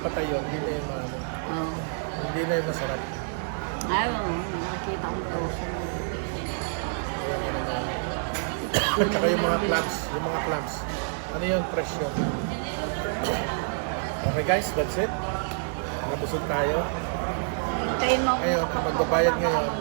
patay yun, hindi na yung Oh. hindi na yung masarap. Ayaw, nakikita kong frozen. At saka yung mga clams. Ano yun? Fresh yun. Okay guys, that's it. Nabusog tayo. Hintayin mo Ngayon, ako magbabayad ngayon.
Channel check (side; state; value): left; silent; digital silence